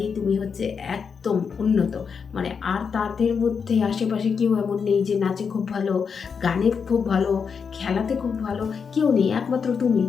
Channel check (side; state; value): right; quieter; 6.1 dB